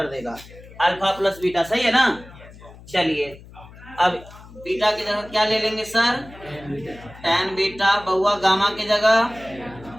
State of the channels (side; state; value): left; noise; hum, 20 dB below the sound